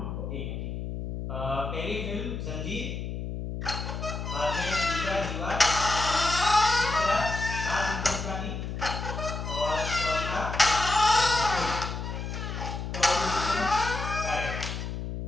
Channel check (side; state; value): left; noise; hum, 5 dB below the sound